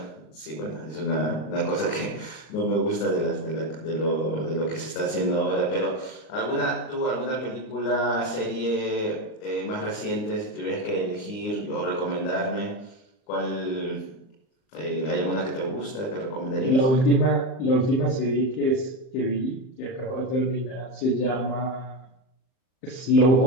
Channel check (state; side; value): late; right; 39 ms